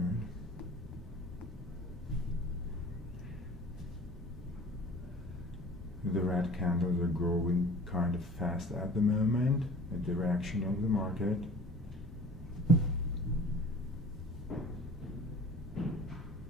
The red candles are growing kind of fast at the moment, the direction of the market. Okay.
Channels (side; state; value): both; normal; correlation 0.45